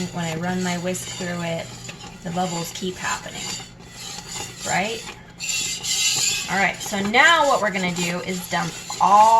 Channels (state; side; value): identical; both; correlation 1.00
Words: When I run my whisk through it, the bubbles keep happening, right? All right, so now what we're gonna do is dump